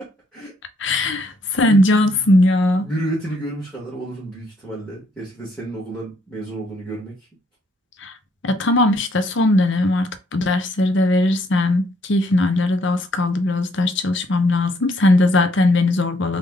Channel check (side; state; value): both; normal; correlation 0.69